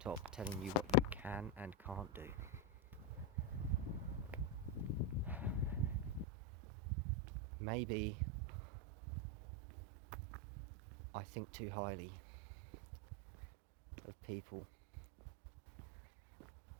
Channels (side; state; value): left; drops out; at 6.2 s